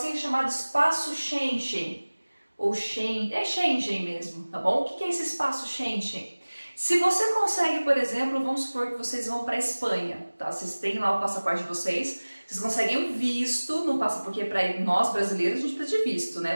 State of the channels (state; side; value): inverted; both; correlation -1.00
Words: chamado espaço Schengen, ou Schengen mesmo, tá bom? O que é esse espaço Schengen? Se você consegue, por exemplo, vamos supor que vocês vão para a Espanha, tá? Vocês têm lá o passaporte de vocês conseguem um visto, não passa porque para nós brasileiros a gente precisa de visto,